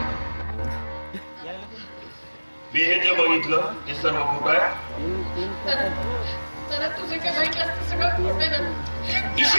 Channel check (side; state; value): both; inverted; correlation -1.00